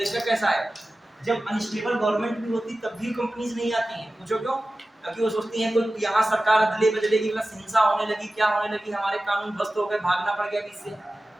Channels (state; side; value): normal; both; correlation 0.95